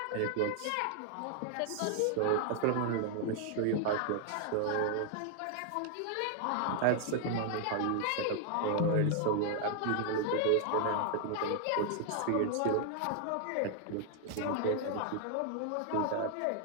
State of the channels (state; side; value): different; both; correlation 0.00